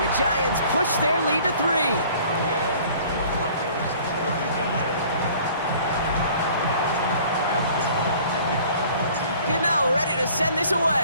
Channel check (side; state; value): both; inverted; correlation -0.52